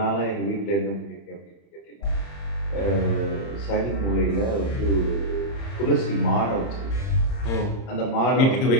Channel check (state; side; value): late; right; 30 ms